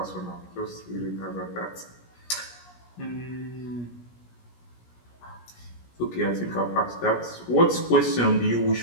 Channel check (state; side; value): late; right; 17 ms